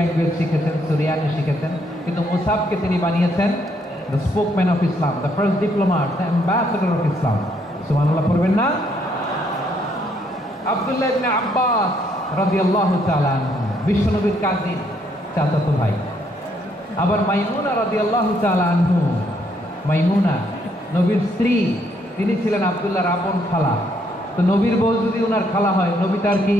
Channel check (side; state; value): both; normal; correlation 0.71